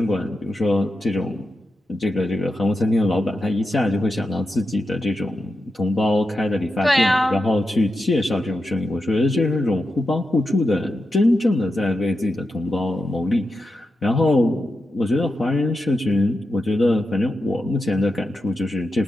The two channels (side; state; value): both; normal; correlation 0.88